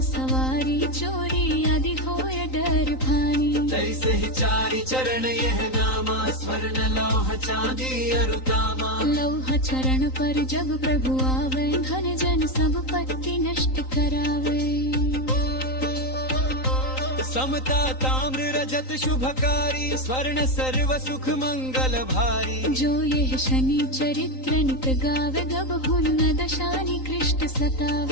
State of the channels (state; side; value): late; right; 3.9 ms